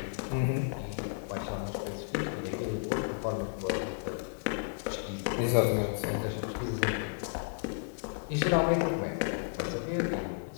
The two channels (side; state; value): right; silent; digital silence